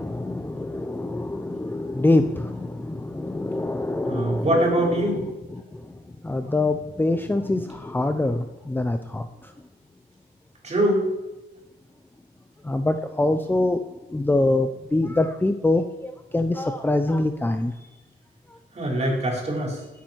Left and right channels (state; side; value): normal; both; correlation 0.82